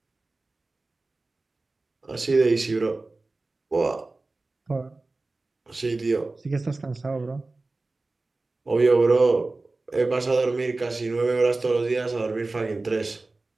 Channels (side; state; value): left; quieter; 3.3 dB